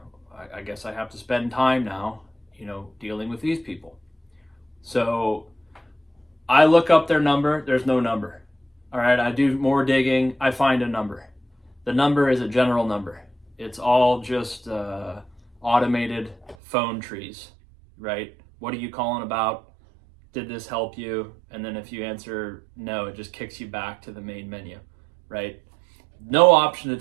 I guess I have to spend time now, dealing with these people. So I look up their number. There's no number. All right, I do more digging. I find a number. The number is a general number. It's all just automated phone trees, right? What are you calling about? Did this help you? And then if you answer no, it just kicks you back to the main menu, right? No option to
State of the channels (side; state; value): left; drops out; at 16.6 s